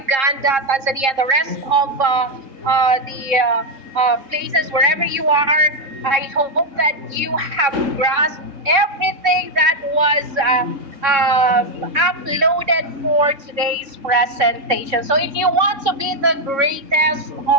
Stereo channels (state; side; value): late; left; 3.7 ms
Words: Tanzania, and the rest of the places, wherever you are, I hope that you have grasped everything that was uploaded for today's presentation. So if you want to be the greatest